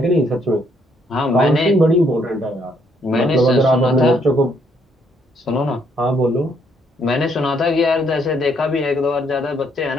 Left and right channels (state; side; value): normal; both; correlation 0.70